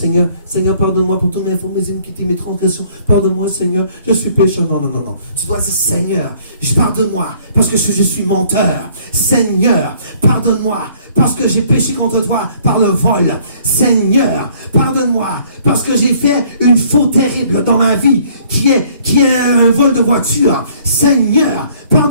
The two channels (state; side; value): inverted; both; correlation -0.59